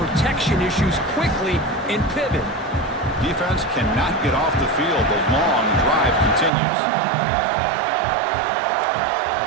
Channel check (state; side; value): drops out; left; at 6.5 s